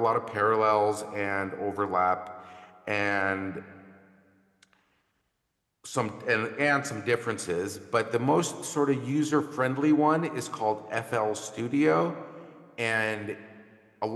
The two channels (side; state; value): both; identical; correlation 1.00